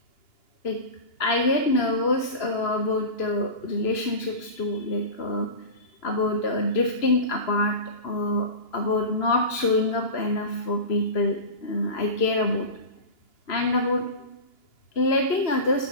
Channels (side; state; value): right; late; 2.9 ms